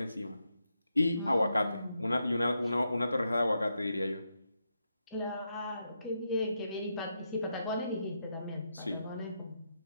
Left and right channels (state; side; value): inverted; both; correlation -0.83